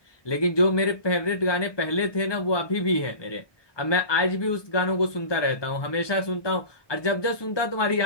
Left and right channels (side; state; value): right; late; 1.2 ms